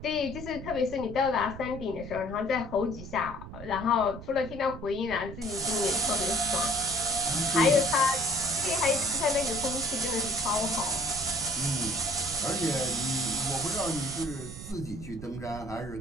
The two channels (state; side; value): noise; right; rumble, 12 dB below the sound